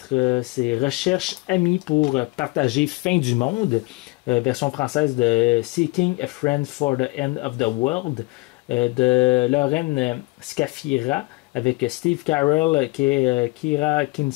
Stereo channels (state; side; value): quieter; right; 24.3 dB